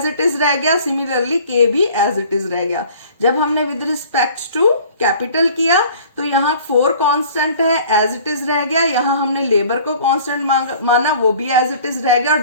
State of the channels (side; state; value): both; inverted; correlation -0.49